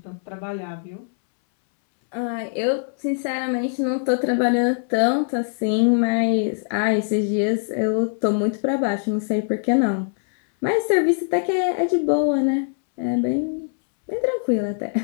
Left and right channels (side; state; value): right; silent; 64 dB below the other